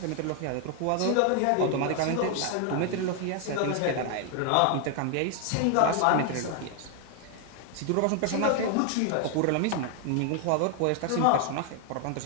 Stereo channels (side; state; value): both; different; correlation 0.00